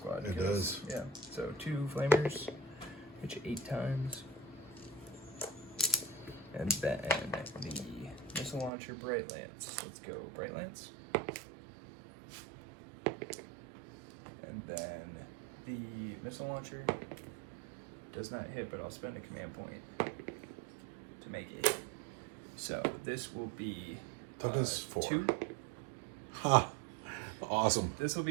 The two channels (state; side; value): drops out; left; at 8.7 s